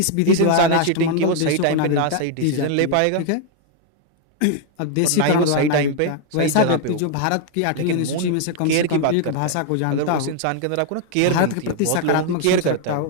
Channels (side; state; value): both; different; correlation 0.00